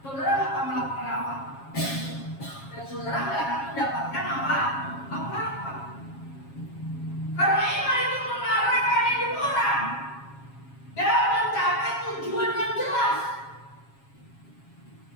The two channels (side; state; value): right; late; 7.3 ms